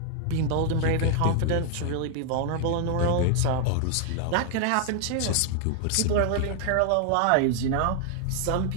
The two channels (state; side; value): different; both; correlation 0.00